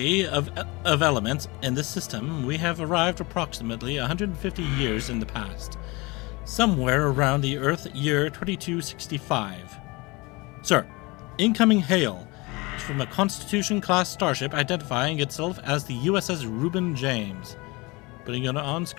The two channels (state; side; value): quieter; right; 24.8 dB